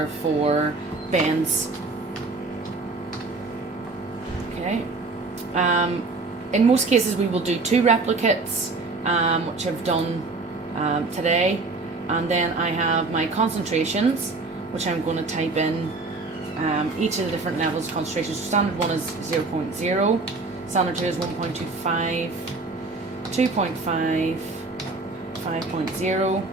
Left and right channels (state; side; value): quieter; left; 3.6 dB